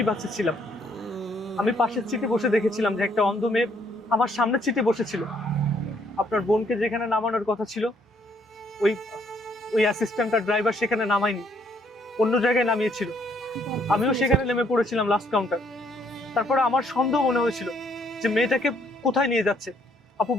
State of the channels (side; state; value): both; normal; correlation 0.68